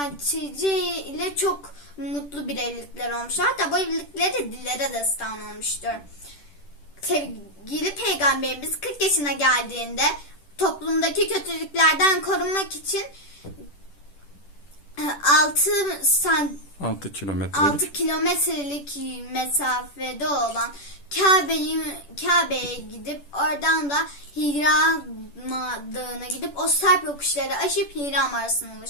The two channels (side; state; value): right; late; 10 ms